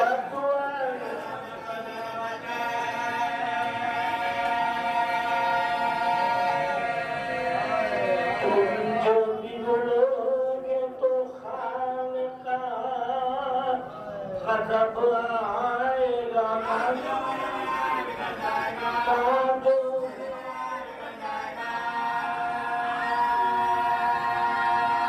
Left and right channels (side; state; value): both; identical; correlation 1.00